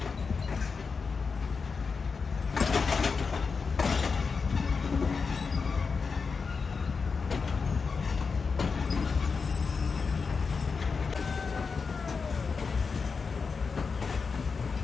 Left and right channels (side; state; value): right; quieter; 5.0 dB